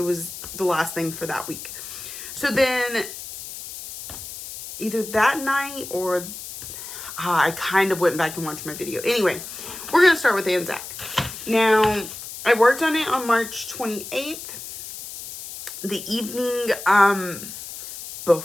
was the last thing for that week. So then either that night or I kind of went back and watched my video. Anyway, we're going to start with Anzac. Now, I worked on it on March 28th. The evening,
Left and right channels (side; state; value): left; noise; hiss, 11 dB below the sound